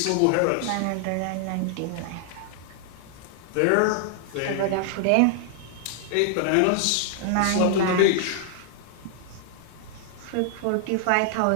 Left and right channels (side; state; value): both; different; correlation 0.00